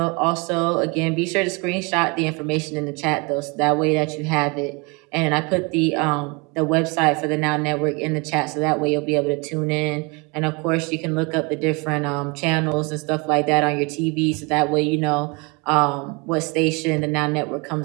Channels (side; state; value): left; quieter; 29.3 dB